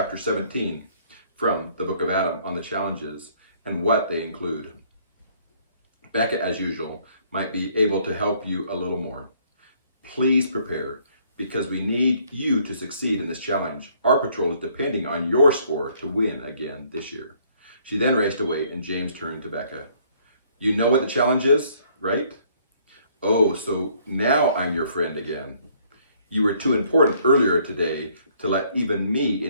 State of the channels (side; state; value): both; inverted; correlation -0.63